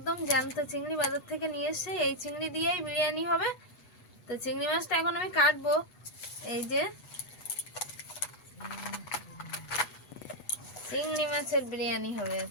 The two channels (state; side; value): late; right; 8.2 ms